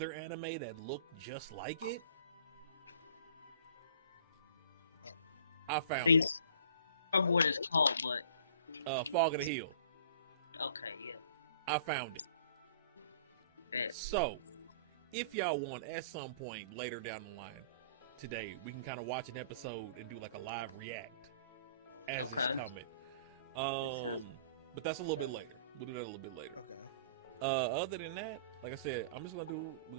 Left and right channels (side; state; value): both; inverted; correlation -0.49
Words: anime that looked just like it? I found it. I remember what it's called, but Fog of the Hill. okay, yeah. I found it. Bet. So, if y'all want, at some point later down the line today, we can kind of watch an episode and do like a live react as it's coming. But that's a little bit later. We'll do that a little bit later. Okay. Other than that, like I said, we're